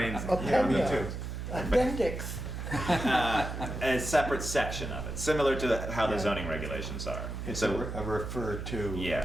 Yeah, me too. Appendix. A separate section of it, similar to how the zoning regulations are. It's So a refer to.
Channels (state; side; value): noise; right; hum, 6 dB below the sound